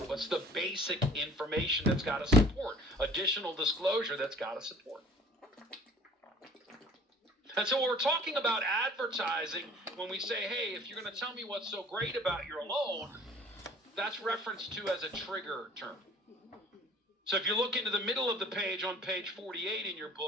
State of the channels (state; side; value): normal; both; correlation 0.50